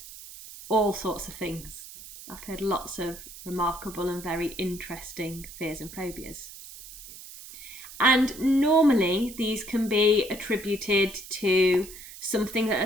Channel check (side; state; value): right; noise; hiss, 15 dB below the sound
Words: all sorts of things. I've heard lots of remarkable and very interesting fears and phobias. And normally these can be attributed to something that